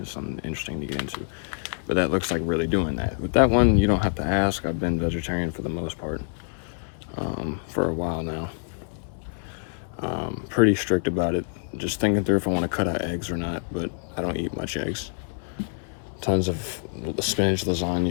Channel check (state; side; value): silent; right; 61 dB below the other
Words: something interesting to get into, but that looks like really doing that. With that one, you don't have to ask. I've been vegetarian for the most part for a while now. Pretty strict about it, just thinking through if I want to cut out eggs or not, but I don't eat much eggs. Tons of spinach